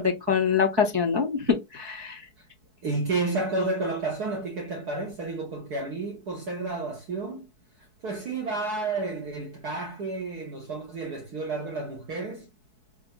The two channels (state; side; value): late; left; 4.6 ms